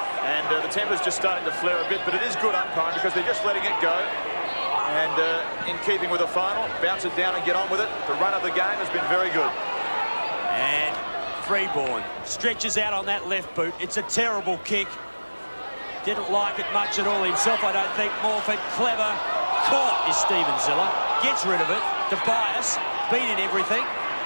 And the temper's just starting to flare a bit, but it is good umpiring because they're just letting it go. And in keeping with the final, bounce it down and get on with it. The run of the game has been very good. And Freeborn stretches out on that left boot. It's a terrible kick. Didn't like it much at all himself, I don't think. Morford, clever. Caught is Steven Ziller. Gets rid of it. Tobias, beating everything.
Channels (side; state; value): both; inverted; correlation -1.00